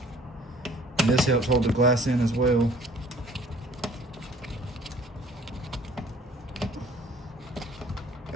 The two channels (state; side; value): normal; both; correlation 0.54